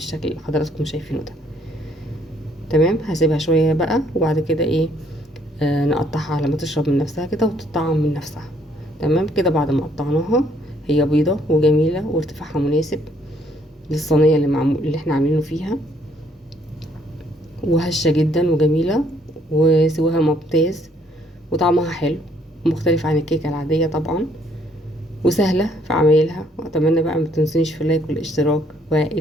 اللي حضراتكم شايفينه ده. تمام. هسيبها شويه بقى، وبعد كده ايه نقطعها على ما تشرب من نفسها كده وتطعم من نفسها. تمام. كده بعد ما قطعناها، هي بيضة وجميلة وارتفاعها مناسب. للصينية اللي احنا عاملينه فيها، وهشة جدا وجميلة وسواها ممتاز وطعمها حلو مختلف عن الكيكة العادية طبعا، وسهلة في عمايلها. واتمنى بقى ما تنسونيش في اللايك والاشتراك،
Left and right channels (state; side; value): normal; both; correlation 0.66